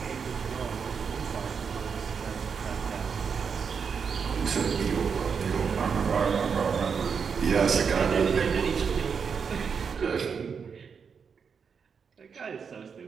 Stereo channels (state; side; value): quieter; left; 6.2 dB